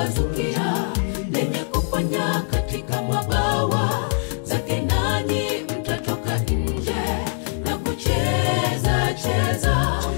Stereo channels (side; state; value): right; silent; 64 dB below the other